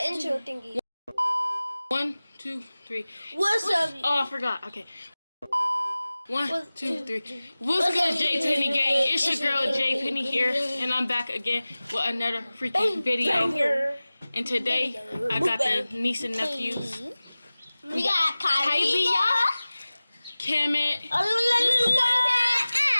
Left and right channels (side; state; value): both; inverted; correlation -0.98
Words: intro thingy. 1, 2, 3. What's up? Oh, I forgot. Okay. 1, 2, 3. What's good, Jpenny gang? It's your girl Jpenny here, and I'm back again with another freaking video. And today I got the niece and nephews. We got Kylie, Kemet,